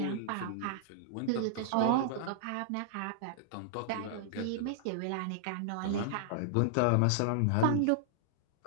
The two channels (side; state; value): both; different; correlation -0.01